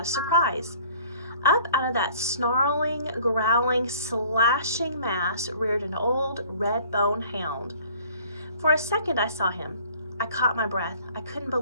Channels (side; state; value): both; inverted; correlation -0.53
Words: a surprise. Up out of that snarling, growling, slashing mass reared an old red-bone hound. For a second I saw him. I caught my breath. I couldn't